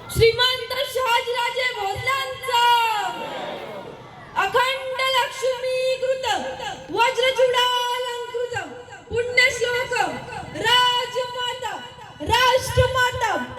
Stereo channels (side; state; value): both; identical; correlation 1.00